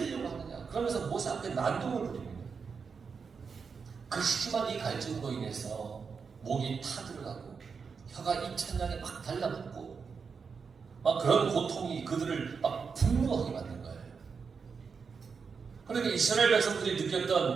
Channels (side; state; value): left; quieter; 5.6 dB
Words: 하느냐. 그러면서 모세 앞에 난동을 부립니다. 그 심한 이 갈증으로 인해서 목이 타들어가고 혀가 입천장에 막 달라붙고 막 그런 고통이 그들을 막 분노하게 만든 거예요. 그러니까 이스라엘 백성들이